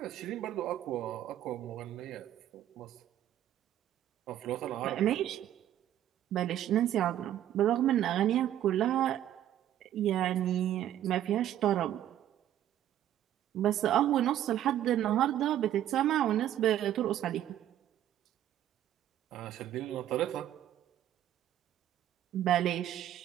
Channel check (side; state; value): left; quieter; 11.7 dB